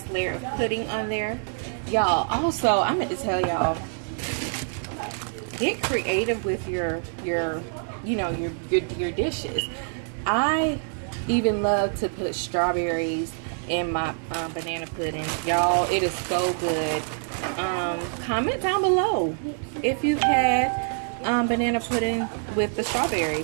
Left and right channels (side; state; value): left; silent; 59 dB below the other